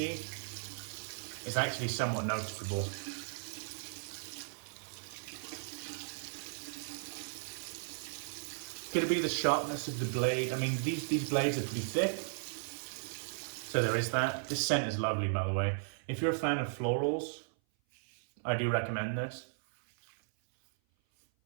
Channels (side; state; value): left; silent; 54 dB below the other